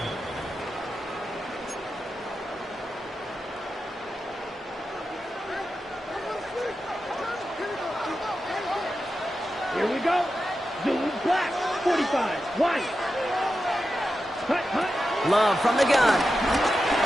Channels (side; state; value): both; normal; correlation 0.90